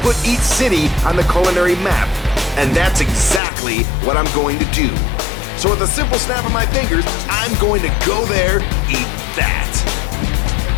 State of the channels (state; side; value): drops out; right; at 3.4 s